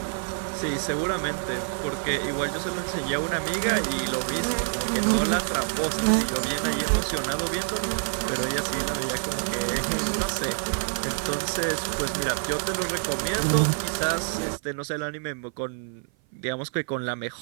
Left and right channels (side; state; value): left; silent; 56 dB below the other